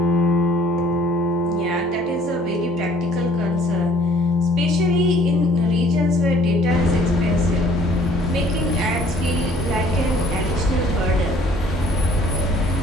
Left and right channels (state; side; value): normal; both; correlation 0.58